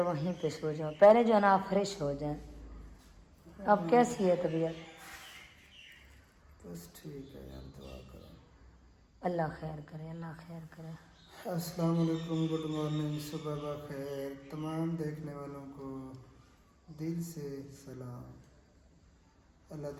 वहीं पे सो जाओ, पहले जो है ना आप फ्रेश हो जाएं। अब कैसी है तबीयत? बस ठीक है यार, दुआ करो। अल्लाह खैर करे, अल्लाह खैर करे। अस्सलाम वालेकुम, गुड मॉर्निंग, सुबह बखैर। तमाम देखने वालों को दिल से सलाम। अल्लाह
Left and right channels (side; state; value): both; identical; correlation 1.00